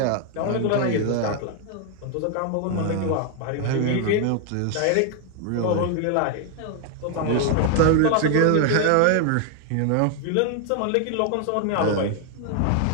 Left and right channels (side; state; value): both; different; correlation 0.00